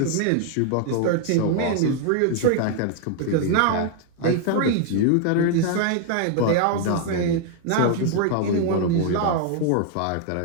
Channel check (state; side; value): different; both; correlation 0.00